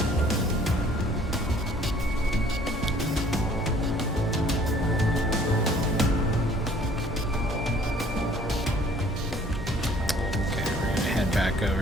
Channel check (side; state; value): both; normal; correlation 0.56